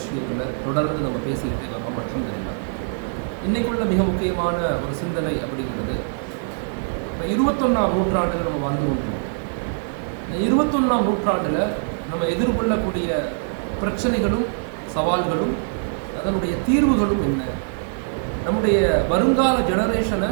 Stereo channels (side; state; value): left; silent; digital silence